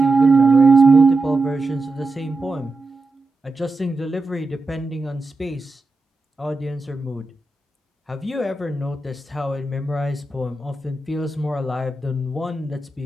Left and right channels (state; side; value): quieter; left; 3.1 dB